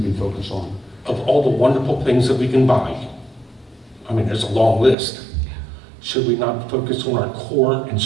can focus on. Of all the wonderful things that we can buy, I mean, there's a long list. Should we not focus on our core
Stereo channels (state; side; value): drops out; left; at 5.0 s